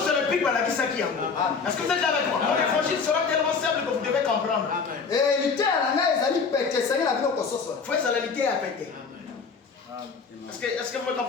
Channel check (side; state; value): right; quieter; 5.2 dB